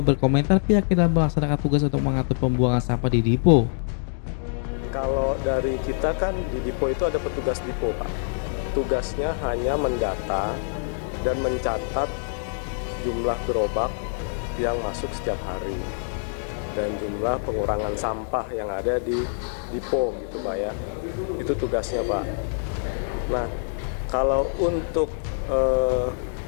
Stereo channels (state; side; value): silent; right; digital silence